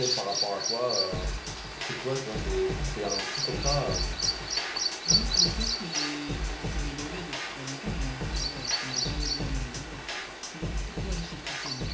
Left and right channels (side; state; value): both; identical; correlation 1.00